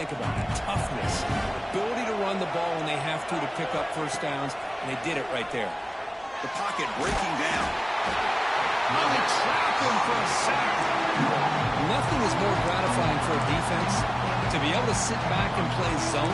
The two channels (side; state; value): both; identical; correlation 1.00